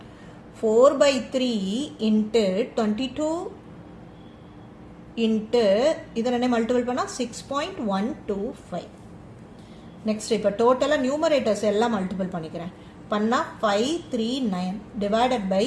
4/3 into 22 into இது ரெண்டையும் மல்டிபிள் பண்ணா 6.125. நெக்ஸ்ட் இப்போ டோட்டலாக நியூமரேட்டர்ஸ் எல்லாம் மல்டிபிள் பண்ணிக்கிறேன். பண்ணா 539 டிவைடட் பை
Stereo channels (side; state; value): both; identical; correlation 1.00